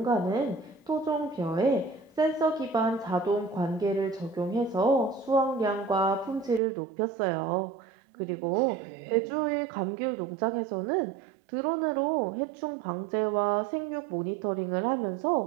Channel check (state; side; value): drops out; left; at 6.6 s